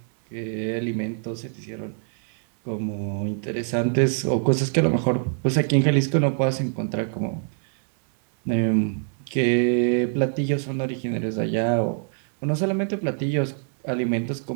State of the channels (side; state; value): left; silent; 62 dB below the other